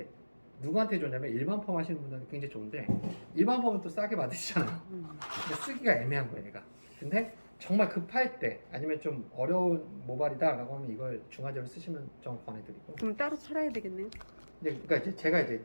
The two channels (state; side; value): inverted; both; correlation -1.00